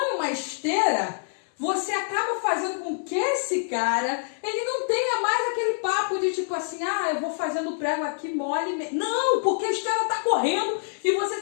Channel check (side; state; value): right; silent; 61 dB below the other